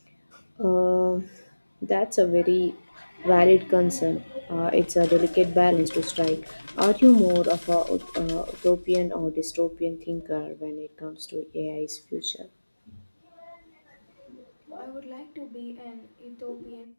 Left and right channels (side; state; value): both; inverted; correlation -1.00